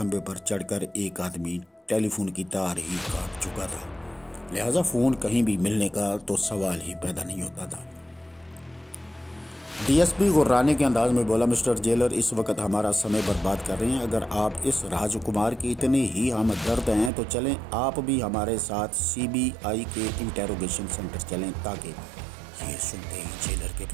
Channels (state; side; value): drops out; left; at 17.1 s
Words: پر چڑھ کر ایک آدمی ٹیلی فون کی تار ہی کاٹ چکا تھا، لہٰذا فون کہیں بھی ملنے کا تو سوال ہی پیدا نہیں ہوتا تھا۔ ڈی ایس پی غرانے کے انداز میں بولا، مسٹر جیلر اس وقت ہمارا سمے برباد کر رہے ہیں۔ اگر آپ اس راج کمار کی اتنے ہی ہمدرد ہیں تو چلیں آپ بھی ہمارے ساتھ سی بی آئی کے انٹیروگیشن سینٹر چلیں۔ تاکہ یہ سنتے ہی جیلر کے